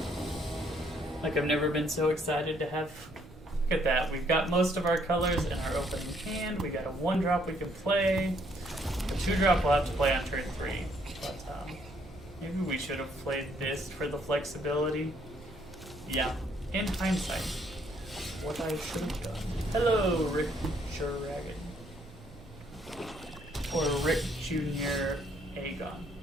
Like, I've never been so excited to have... Look at that. We've got most of our colors in our opening hand. We got a 1-drop we can play. The 2-drop we'll have to play on turn 3. But maybe we should have played this for the flexibility. Yeah, in hindsight, what I should have done. Hello, Rick Dragon. Or Rick Jr. Aegon.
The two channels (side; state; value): both; normal; correlation 0.68